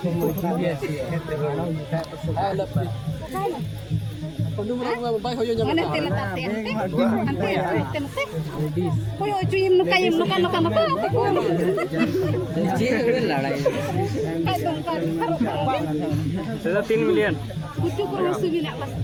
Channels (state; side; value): identical; both; correlation 1.00